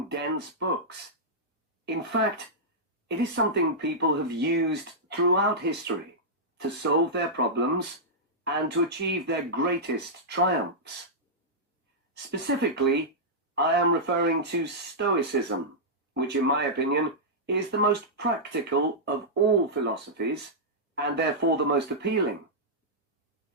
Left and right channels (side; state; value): both; normal; correlation -0.11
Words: dense books. In fact, it is something people have used throughout history to solve their problems and to achieve their greatest triumphs. Specifically, I am referring to Stoicism, which in my opinion is the most practical of all philosophies and therefore the most appealing.